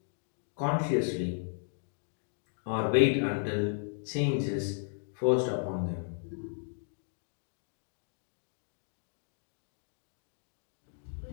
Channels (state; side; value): silent; right; digital silence